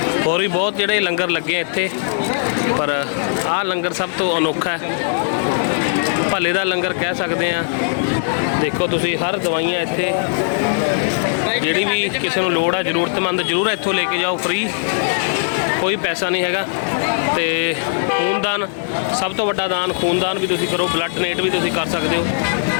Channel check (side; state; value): right; silent; 57 dB below the other